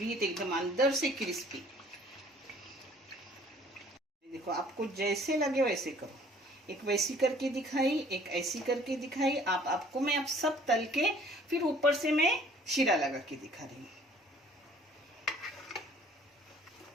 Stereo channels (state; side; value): normal; both; correlation 0.55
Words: तो एकदम अंदर से क्रिस्पी। देखो आपको जैसे लगे वैसे करो। एक वैसी करके दिखाई, एक ऐसी करके दिखाई। आपको मैं अब सब तल के फिर ऊपर से मैं शीरा लगा के दिखा रही हूँ।